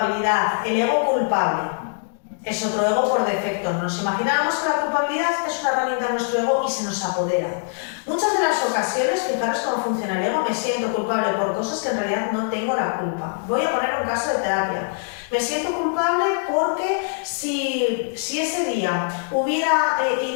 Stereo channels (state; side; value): silent; right; digital silence